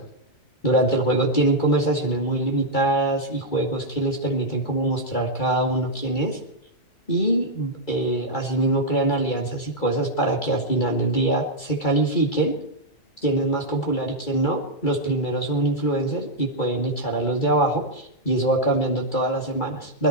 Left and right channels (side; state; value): right; late; 2.3 ms